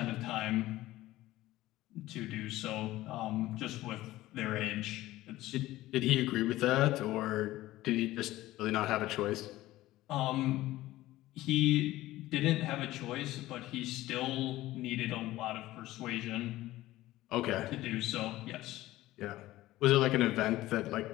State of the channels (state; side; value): quieter; right; 16.5 dB